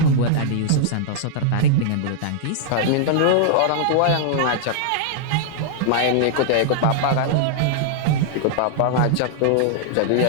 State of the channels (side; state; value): both; different; correlation -0.01